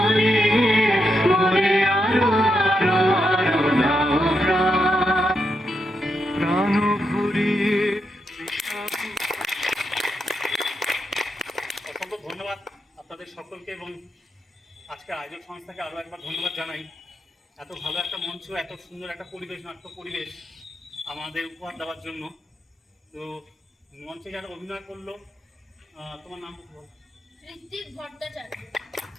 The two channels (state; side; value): normal; both; correlation 0.84